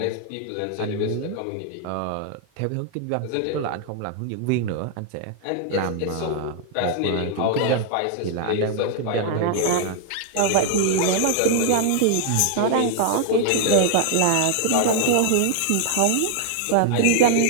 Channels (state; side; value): different; both; correlation 0.00